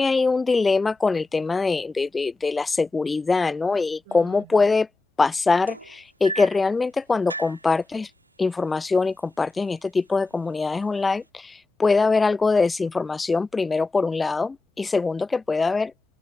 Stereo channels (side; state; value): right; quieter; 3.7 dB